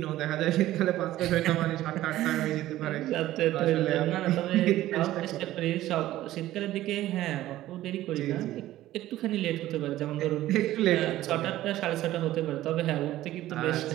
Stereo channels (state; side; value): quieter; left; 14.8 dB